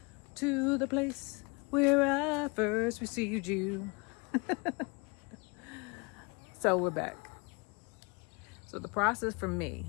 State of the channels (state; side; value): quieter; right; 29.6 dB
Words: to the place where I first received you. So we're back. So the process for me